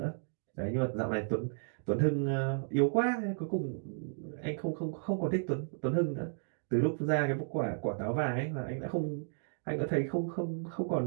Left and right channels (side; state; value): left; silent; digital silence